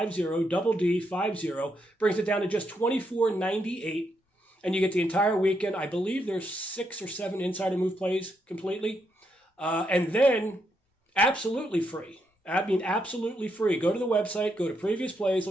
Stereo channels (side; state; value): both; normal; correlation 0.79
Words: double D50. Brings it down to just $24.98. And you get the entire weekend. I believe there's 6 or 7 insider move plays completely. And then absolutely free. I mean, absolutely free. Go to the website, go to previous plays,